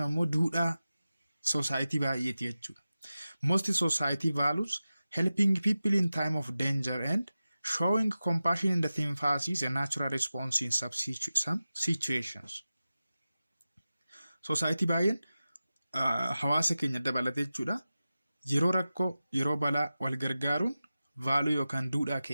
ammoo duudhaa society baay'eeti jechuudha. Most society values helping people in time of danger and showing compassion in the sympathy is a natural response in some situations. Society baay'een hawaasa keenya dabalatee jechuudha. Yeroo rakkoo, yeroo balaa wal gargaaruun vaaluu yookaan duudhaa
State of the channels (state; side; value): inverted; both; correlation -0.95